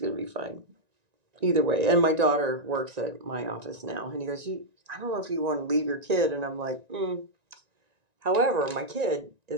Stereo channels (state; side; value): late; left; 1.9 ms